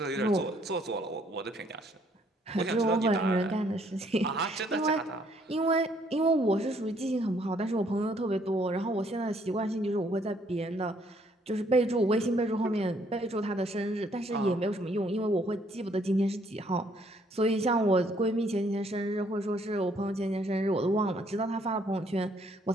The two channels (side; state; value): both; normal; correlation 0.66